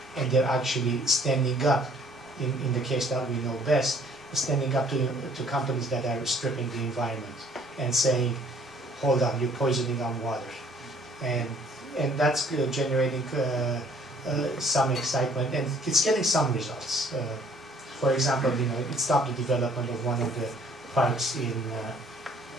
and they're actually standing up, in the case that we know best, standing up to companies that are stripping the environment and saying, hold on, you're poisoning our water. And that's generating some excitement, and it's getting some results. For example, it stopped the development of one of the parks in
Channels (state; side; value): normal; both; correlation 0.59